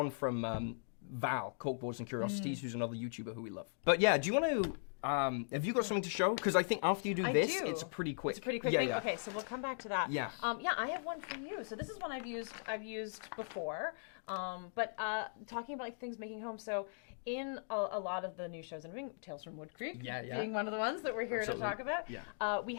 from Val, Corkboards and Curiosities, who's another YouTuber who we love. But yeah, do you want to, have you got something to show? Because I think after you do I this, do. it's pretty quick. It's a pretty quick Yeah, thing. yeah. Okay, so we'll come back to that. Yeah. Yeah, I have one for you. So this is one I've used before. But talking about like things making home. So in a lot of the new shows and Tales from Woodcreek, Yeah. being one of the ones that we're here Absolutely. to talk about, Yeah. we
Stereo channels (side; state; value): right; silent; digital silence